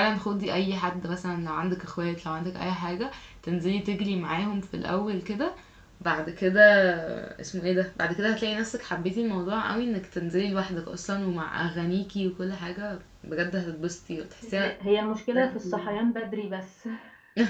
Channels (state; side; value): identical; both; correlation 1.00